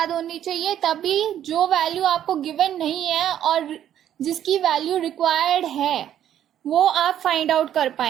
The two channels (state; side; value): quieter; left; 10.8 dB